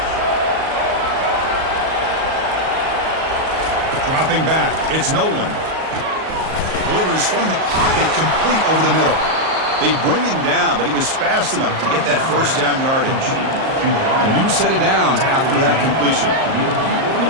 Dropping back. It's Nolan. Delivers from the pocket, complete over the middle. They bring him down, but he was fast enough to get that first down yardage. A new set of downs after that completion. How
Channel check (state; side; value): late; left; 38 ms